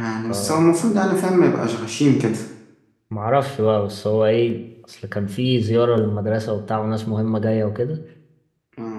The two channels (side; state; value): both; identical; correlation 1.00